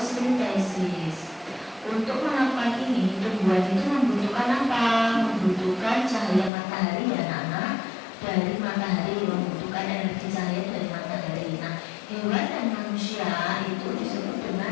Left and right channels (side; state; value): right; drops out; at 6.5 s